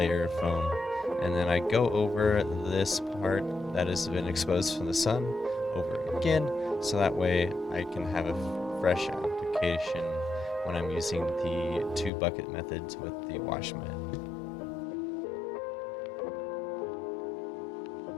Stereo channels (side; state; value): right; drops out; at 12.1 s